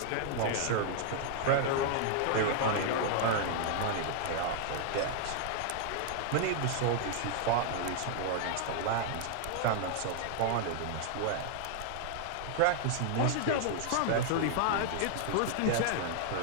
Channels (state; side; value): different; both; correlation 0.00